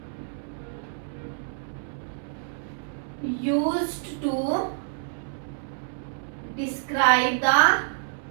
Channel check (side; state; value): left; silent; 60 dB below the other